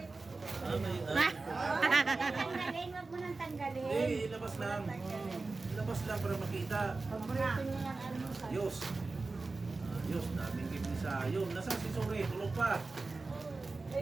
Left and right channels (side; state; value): left; quieter; 3.7 dB